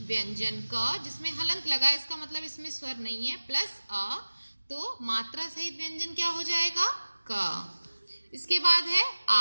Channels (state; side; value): inverted; both; correlation -1.00